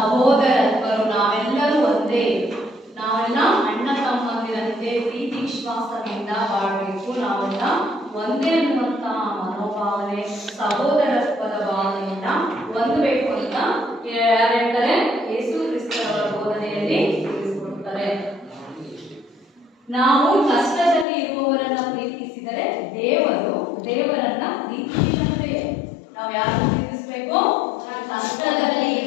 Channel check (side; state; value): right; drops out; at 21.1 s